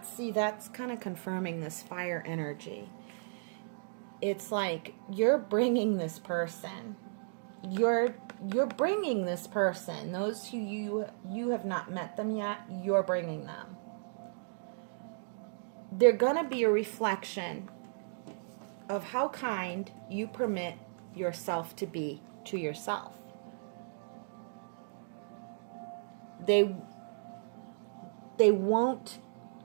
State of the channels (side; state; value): left; silent; digital silence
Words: kind of confirming this fire energy. It's like you're bringing this person. You're bringing this person. Those who you have not met them yet, you're bringing them. they're going to be a reflection of how kind you permit yourself to be to yourself. They won't